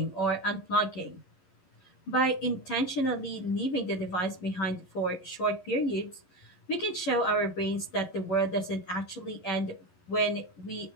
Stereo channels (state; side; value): late; right; 11 ms